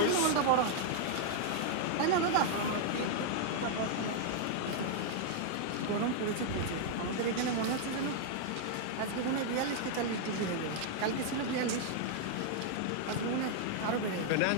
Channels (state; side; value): different; both; correlation 0.00